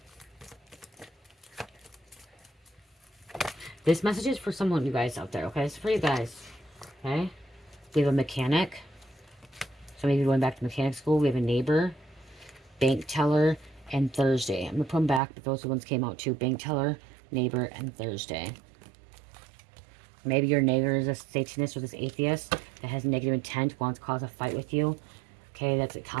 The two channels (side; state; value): left; drops out; at 15.2 s